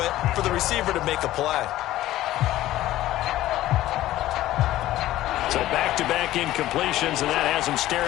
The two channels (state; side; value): quieter; right; 14.9 dB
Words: it for the receiver to make a play. So back-to-back incompletions, and that has him